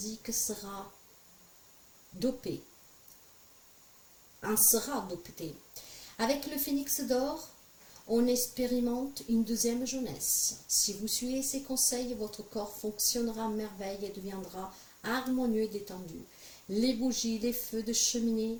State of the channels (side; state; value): both; identical; correlation 1.00